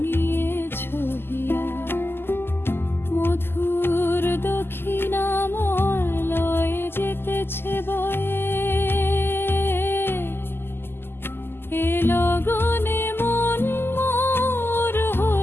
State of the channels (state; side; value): late; right; 0.11 ms